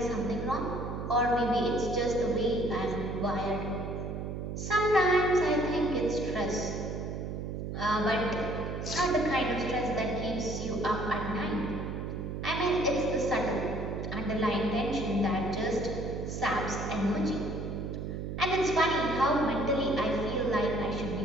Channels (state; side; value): noise; right; hum, 5 dB below the sound